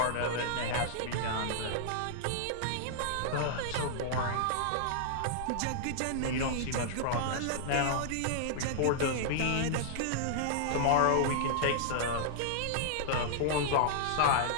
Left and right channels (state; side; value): different; both; correlation -0.01